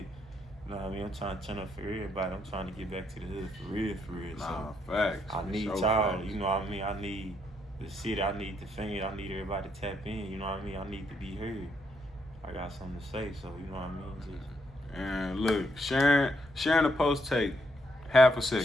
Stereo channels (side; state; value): both; normal; correlation 0.75